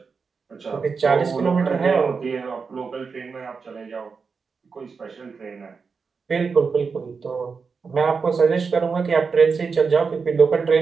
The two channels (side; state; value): left; quieter; 5.2 dB